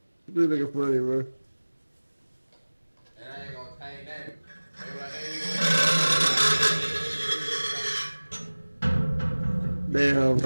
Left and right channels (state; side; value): inverted; both; correlation -1.00